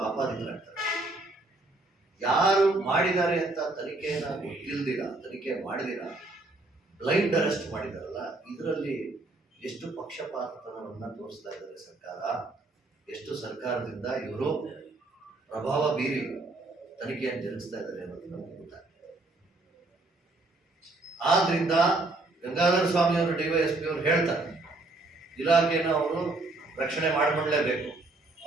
ಆಪಾದಿತರಾಗ್ತಾರೆ. ಯಾರು ಮಾಡಿದ್ದಾರೆ ಅಂತ ತನಿಖೆನ ತನಿಖೆ ಮಾಡಿದಿರ ಬ್ಲೈಂಡ್ ಅರೆಸ್ಟ್ ಮಾಡಿದಾರಲ್ಲ, ಇದರಲ್ಲಿ ಎಷ್ಟು ಪಕ್ಷಪಾತತನವನ್ನು ತೋರಿಸ್ತಾ ಇದ್ದಾರೆ ಸರ್ಕಾರ, ಎಷ್ಟು ಸರ್ಕಾರದಿಂದ ಇವರು ಪ್ರಭಾವ ಬೀರಿ ತನಿಖೆಯನ್ನು ಜರುಗಿಸ್ತಾ ಇದ್ದಾರೆ ಅನ್ನೋದು ನಮಗೆ ಗೊತ್ತಾಗ್ತದೆ. ಆದ್ರಿಂದ ಗಂಗಾಧರ ಸ್ವಾಮಿ ಅವರು ಡಿವೈಎಸ್ಪಿ ಅವರು ಹೇಳ್ತಾರೆ, ಇಲಾಖೆಯನ್ನು ಅವರು ರಕ್ಷಣೆ ಮಾಡಿಕೊಳ್ಳಲೇಬೇಕು,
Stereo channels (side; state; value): left; quieter; 3.0 dB